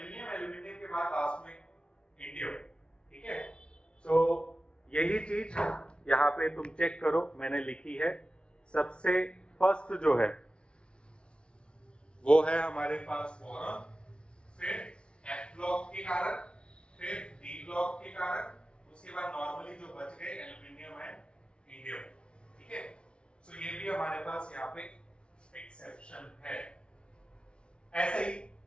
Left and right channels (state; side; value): late; right; 0.058 ms